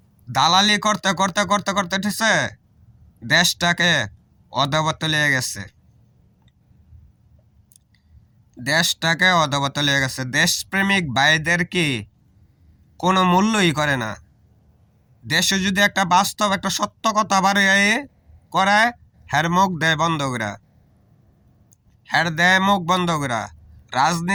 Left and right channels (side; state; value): both; identical; correlation 1.00